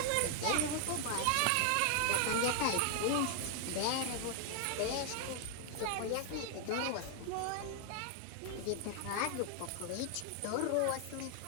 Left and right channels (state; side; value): different; both; correlation 0.00